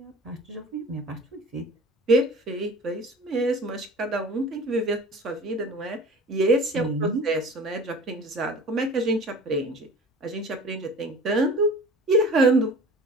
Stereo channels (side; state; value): both; normal; correlation 0.41